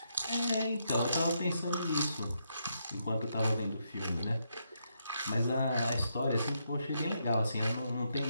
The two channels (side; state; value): both; inverted; correlation -0.79